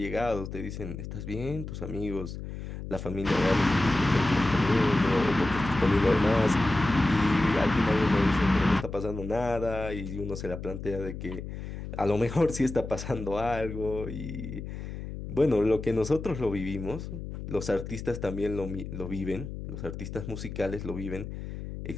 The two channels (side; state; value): left; noise; hum, 8 dB below the sound